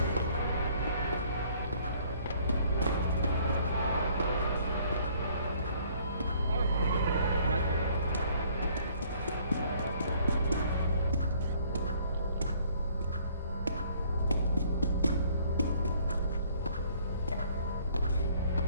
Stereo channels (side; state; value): both; inverted; correlation -0.60